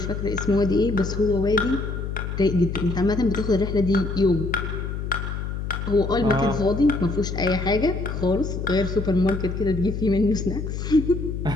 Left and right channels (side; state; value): left; noise; hum, 5 dB below the sound